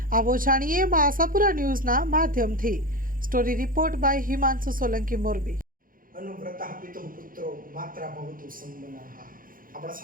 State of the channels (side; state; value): left; late; 0.41 ms